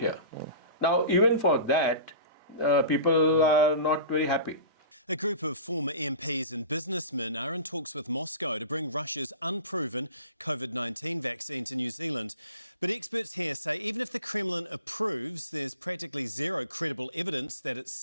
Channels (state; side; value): inverted; both; correlation -0.38